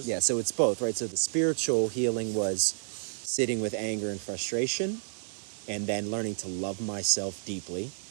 Yeah, so it's both, right? So the spiritual healing was sitting with anger and frustration, and then learning to love myself deeply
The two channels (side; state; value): left; silent; digital silence